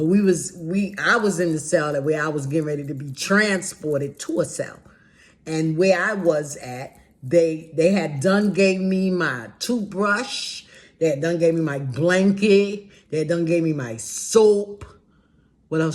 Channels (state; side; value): identical; both; correlation 1.00